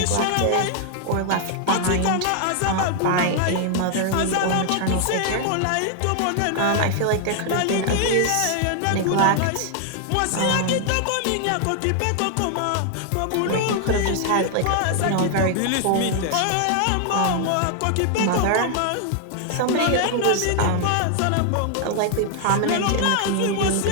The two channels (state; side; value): different; both; correlation 0.00